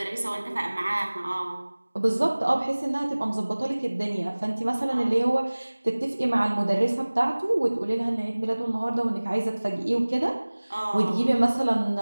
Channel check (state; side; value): inverted; both; correlation -1.00